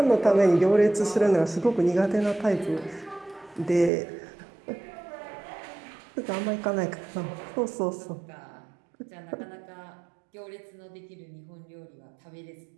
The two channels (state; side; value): drops out; left; at 3.9 s